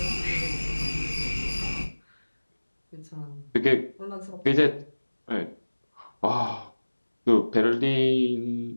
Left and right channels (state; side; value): inverted; both; correlation -1.00